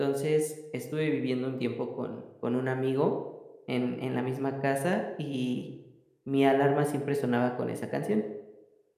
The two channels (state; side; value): identical; both; correlation 1.00